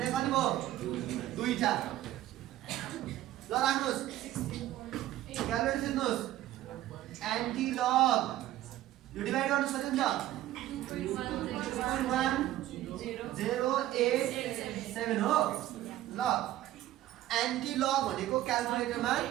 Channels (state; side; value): quieter; left; 14.2 dB